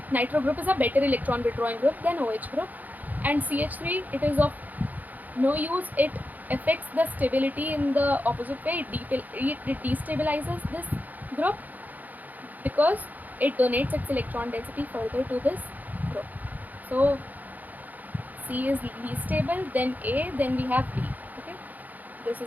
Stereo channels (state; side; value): late; left; 0.082 ms